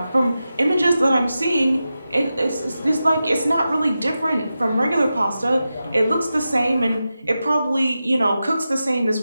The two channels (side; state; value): both; inverted; correlation -0.92